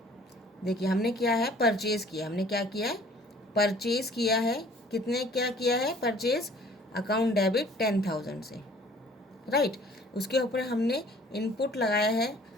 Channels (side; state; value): both; normal; correlation 0.53